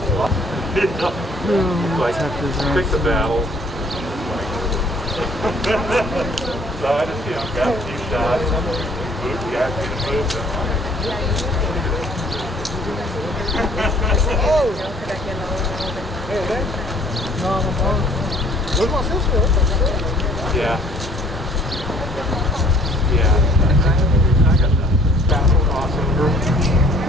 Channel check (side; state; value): both; normal; correlation 0.58